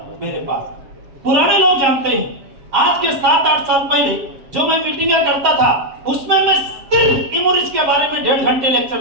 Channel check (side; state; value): left; late; 7.4 ms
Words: मेरे पास। पुराने लोग जानते हैं, आज के 7-8 साल पहले जो मैं मीटिंगें करता था, उसमें मैं सिर्फ इम्यूनिटी के बारे में 1.5 घंटे लेक्चर